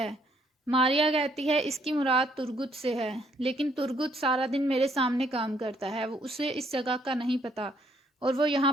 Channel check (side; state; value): both; normal; correlation 0.68